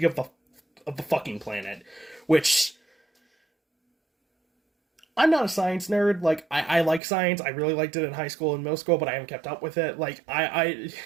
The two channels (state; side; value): drops out; left; at 7.0 s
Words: of the fucking planet, which I'm not a science nerd. Like, I like science. I really liked it in high school and middle school, but I haven't kept up with it. Like, I